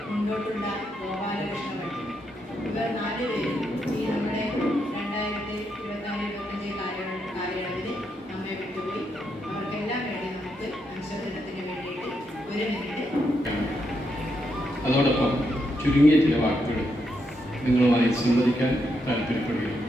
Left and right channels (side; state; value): both; normal; correlation 0.80